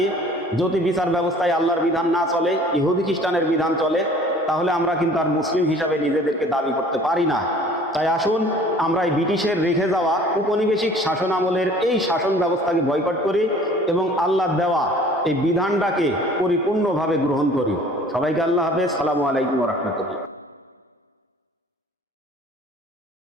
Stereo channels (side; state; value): both; normal; correlation 0.50